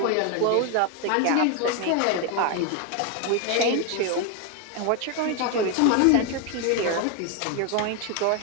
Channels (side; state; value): both; different; correlation 0.01